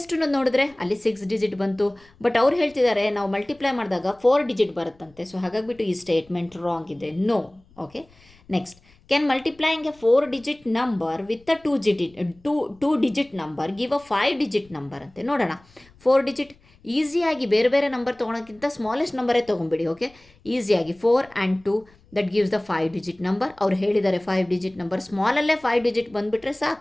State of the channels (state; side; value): noise; left; rumble, 29 dB below the sound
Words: ನೋಡಿದ್ರೆ ಅಲ್ಲಿ 6 digit ಬಂತು. ಬಟ್ ಅವ್ರು ಹೇಳ್ತಿದ್ದಾರೆ ನಾವು ಮಲ್ಟಿಪ್ಲೈ ಮಾಡಿದಾಗ 4 digit ಬರುತ್ತಂತೆ. ಸೊ ಹಾಗಾಗಿಬಿಟ್ಟು ಈ ಸ್ಟೇಟ್ಮೆಂಟ್ ರಾಂಗ್ ಇದೆ. No. Okay. Next can multiplying a 4 digit number with a 2 digit number give a 5 digit number ಅಂತೆ. ನೋಡೋಣ. 4 digit ಈಸಿಯಾಗಿ ಬೇರೆ ಬೇರೆ ನಂಬರ್ ತೊಗೊಳೋಕ್ಕಿಂತ ಸ್ಮಾಲೆಸ್ಟ್ ನಂಬರೇ ತೊಗೊಂಬಿಡಿ. ಓಕೆ. ಈಸಿಯಾಗಿ 4 and 2 that gives the 5 digit number. ಅವ್ರು ಹೇಳಿದ್ದಾರೆ 5 digit ನಂಬರ್, ಸ್ಮಾಲಲ್ಲೇ 5 digit ಬಂದುಬಿಟ್ರೆ